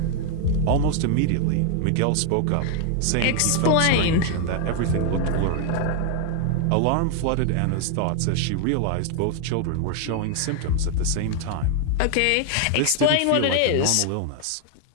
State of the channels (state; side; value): different; both; correlation 0.00